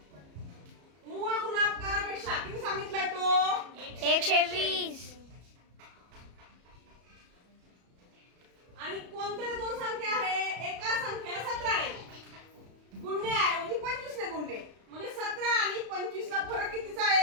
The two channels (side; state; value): left; late; 33 ms